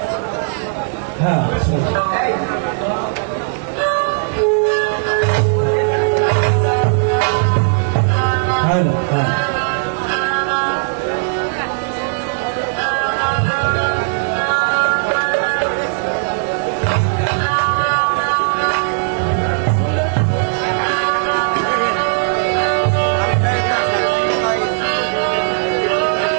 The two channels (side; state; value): left; silent; digital silence